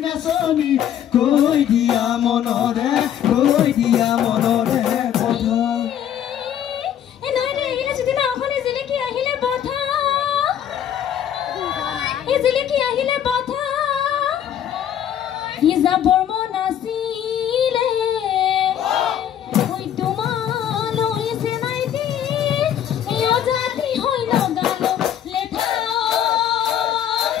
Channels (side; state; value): right; quieter; 10.1 dB